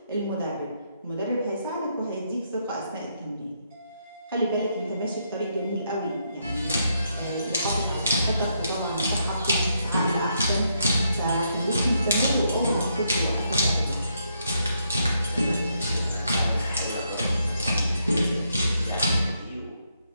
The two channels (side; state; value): both; inverted; correlation -0.77